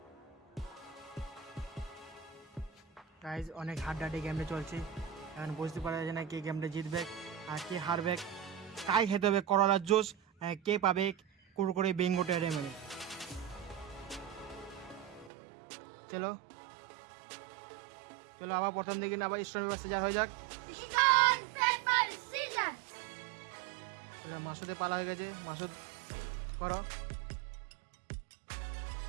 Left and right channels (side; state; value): left; drops out; at 15.3 s